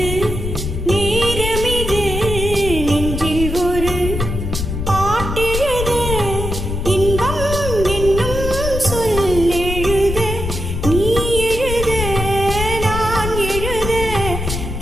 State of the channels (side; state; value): left; noise; rumble, 4 dB below the sound